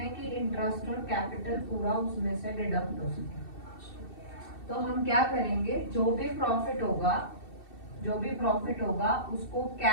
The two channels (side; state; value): right; late; 2.7 ms